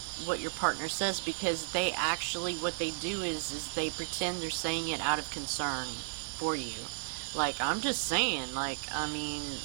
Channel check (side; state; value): left; silent; digital silence